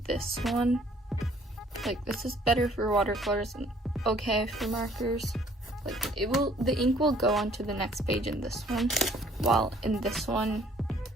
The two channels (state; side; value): normal; both; correlation 0.59